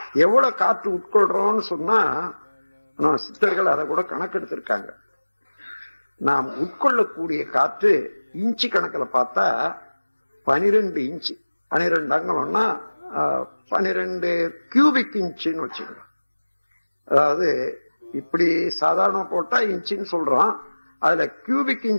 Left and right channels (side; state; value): both; inverted; correlation -1.00